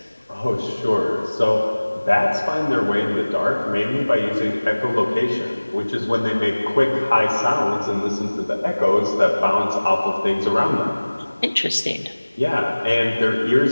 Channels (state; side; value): inverted; both; correlation -1.00